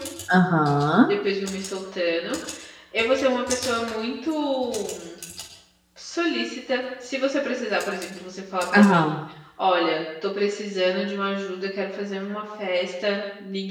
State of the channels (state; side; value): identical; both; correlation 1.00